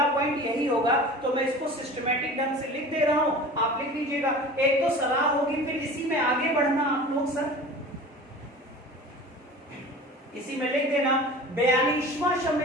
पॉइंट यही होगा। तो मैं इसको सिस्टमैटिक ढंग से लिख दे रहा हूं, आप लिख लीजिएगा। एक तो सलाह होगी, फिर इसी में आगे बढ़ना आप लोग सर, इसी में लिख देना 42वां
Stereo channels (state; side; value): normal; both; correlation 0.38